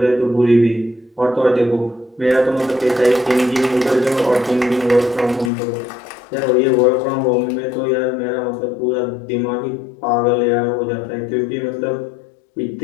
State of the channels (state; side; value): drops out; right; at 5.5 s